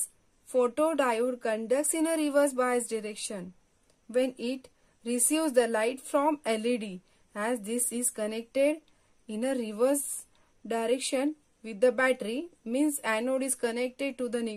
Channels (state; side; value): identical; both; correlation 1.00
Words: photodiode conducts in a reverse bias direction when it receives the light from LED, as this is connected in a reverse direction with the battery, means anode is connected to the